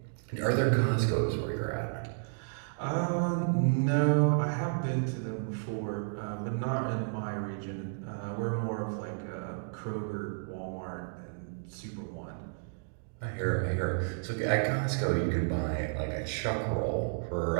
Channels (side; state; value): left; silent; digital silence